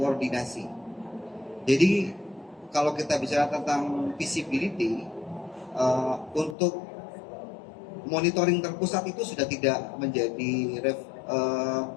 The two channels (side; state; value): right; drops out; at 6.6 s